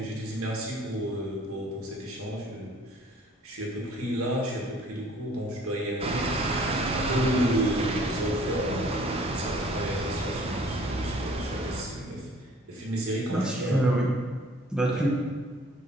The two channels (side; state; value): both; normal; correlation 0.54